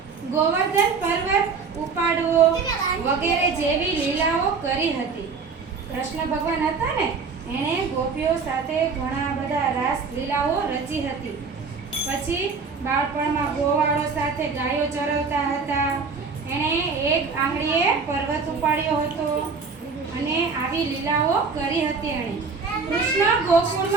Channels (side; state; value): left; quieter; 4.9 dB